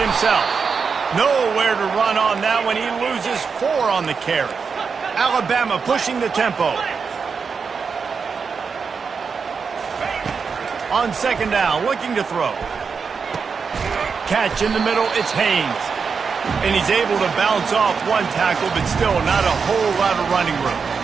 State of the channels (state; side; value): quieter; left; 5.6 dB